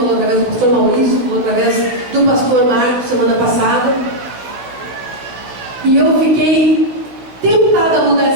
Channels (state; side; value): late; left; 16 ms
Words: através do pastor Maurício, falou através do pastor Marcos semana passada. E eu fiquei tentada a mudar